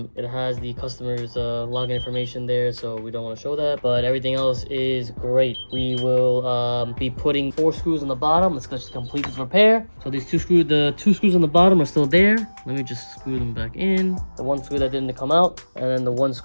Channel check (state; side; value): inverted; both; correlation -1.00